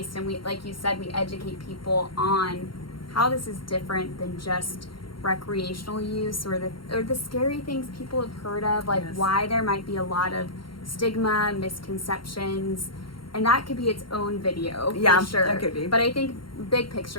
And we, like you said, we educate people on how this is different than just recreational use or the scary things people have heard of, like why there might be a lot of stigma, misconceptions. And that could be its own video, for sure. That could be. But I think, big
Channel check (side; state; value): right; late; 0.73 ms